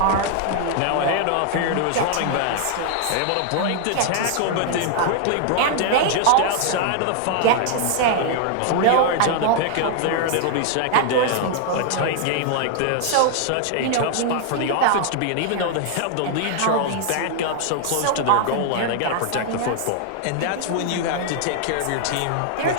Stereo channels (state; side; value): different; both; correlation 0.00